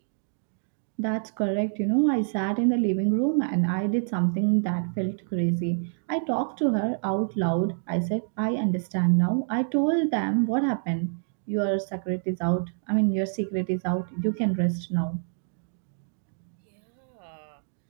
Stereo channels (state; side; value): silent; left; digital silence